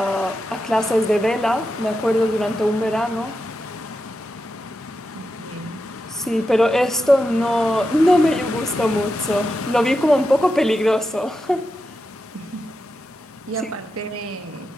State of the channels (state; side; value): normal; both; correlation 0.88